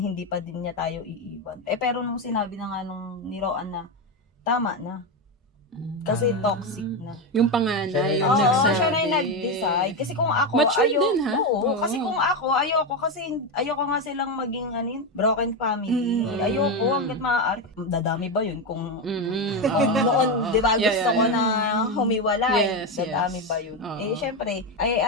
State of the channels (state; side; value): normal; both; correlation 0.11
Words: pa din niya tayo iiwan. Pero nung sinabi na nga nung ni Roan na, tama na. Kasi toxic na. Yung panganay, yung Oo, nagsabi. siya na yung nag-decide. Kasi kung ako, Mature din, ha? Oo, Oo. kasi kung ako, ayoko nga silang maging broken family. Ayoko, hanggat maaari. Dadami ba yun? Kung noon, di ba, gusto ko na humiwalay. Yes, Dadami yes. ba yun? Oo. Syempre,